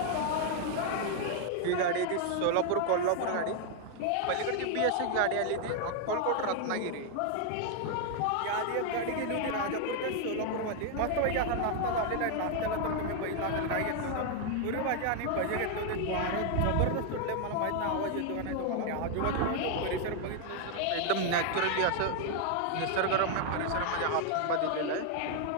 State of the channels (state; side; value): different; both; correlation 0.00